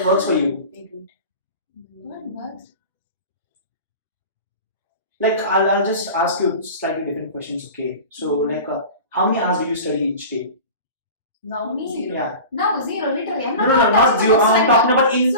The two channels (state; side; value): inverted; both; correlation -0.35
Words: works for you? What works? Like, I'll just ask you slightly different questions, okay? So, like, how many hours do you study each day? Now, Me? 0. Yeah. No, zero, literally. I'm No, not not touching zero. the books I'm right talking now. about in